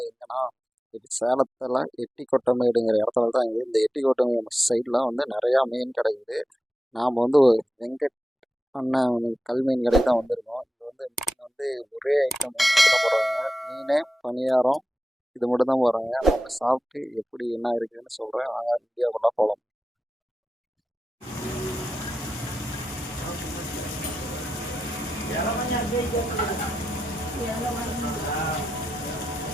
எங்கன்னா இது சேலத்தில் எட்டிக்கொட்டமேடுங்கிற இடத்துல தான் இருக்குது. இந்த எட்டிக்கொட்டமேடு சைடில் வந்து நிறையா மீன் கிடைக்குது. நாம் வந்து வெங்கட் அண்ணன் கல்மீன் கடைக்கு தான் வந்திருக்கோம். இது வந்து மீன் வந்து ஒரே ஐட்டம் மட்டும் தான் போடுறாங்க. மீன் பணியாரம் இது மட்டும் தான் போடுறாங்க. நம்ம சாப்பிட்டு எப்படி என்ன இருக்குதுன்னு சொல்கிறேன். நாங்கள் வீடியோக்குள்ளே போகலாம்.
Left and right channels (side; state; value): both; normal; correlation 0.91